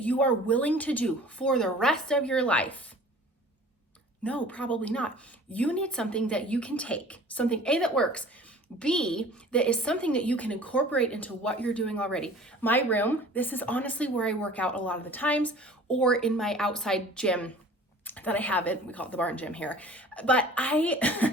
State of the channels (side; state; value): both; normal; correlation 0.46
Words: you are willing to do for the rest of your life? No, probably not. You need something that you can take, something A, that works, B, that is something that you can incorporate into what you're doing already. My room, this is honestly where I work out a lot of the times, or in my outside gym that I have it. We call it the barn gym here. But